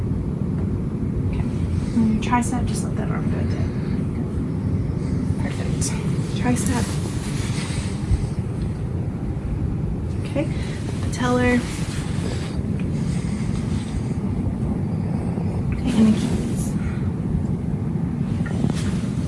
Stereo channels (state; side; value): identical; both; correlation 1.00